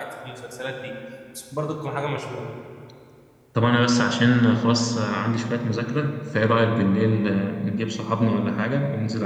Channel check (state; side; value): identical; both; correlation 1.00